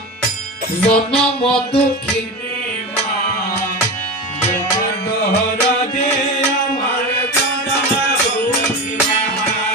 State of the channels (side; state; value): both; normal; correlation 0.24